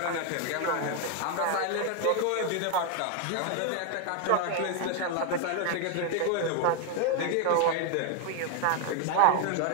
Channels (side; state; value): both; different; correlation 0.01